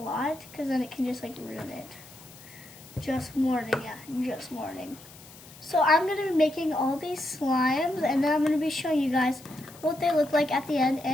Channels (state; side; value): noise; left; hiss, 20 dB below the sound